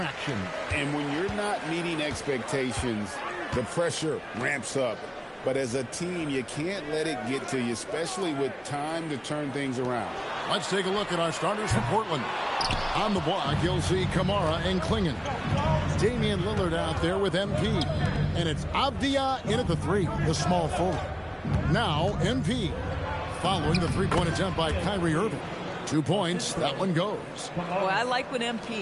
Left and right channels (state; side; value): identical; both; correlation 1.00